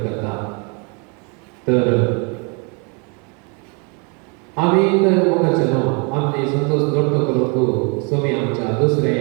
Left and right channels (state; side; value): quieter; left; 34.2 dB